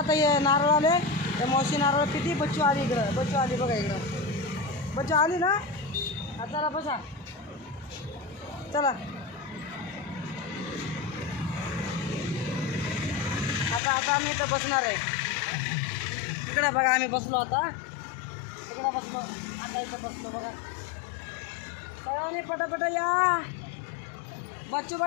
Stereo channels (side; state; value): right; drops out; at 13.8 s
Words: हे नारळ आले. हे मावशी नारळ किती. बच्चू आली इकडं. बच्चू आली बघा इकडं. बच्चू आली ना. हा चला बसा. चला आता आम्ही इथं बसणार आहे. इकडं बघा आम्ही बसलो आता. इकडं बसलो आता. इथं बसलो बघा. सगळ्यांनी पटापटा या. बच्चू